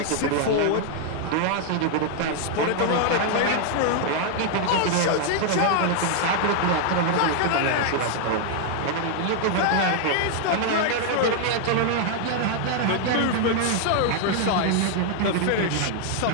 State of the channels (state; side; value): different; both; correlation 0.00